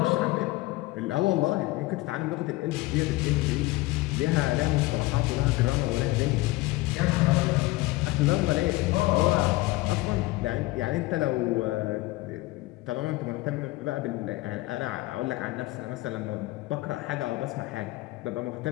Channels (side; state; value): right; quieter; 19.8 dB